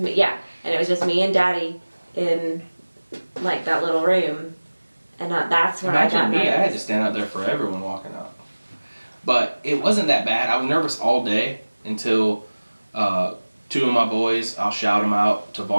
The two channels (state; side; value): inverted; both; correlation -1.00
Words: yeah. And it was just me and Daddy in like that little room. And that's when I got Imagine me, nervous. I had to stand out there for everyone walking out. But it wasn't that bad. I was nervous all day until 2 of my boys, I'll shout them out,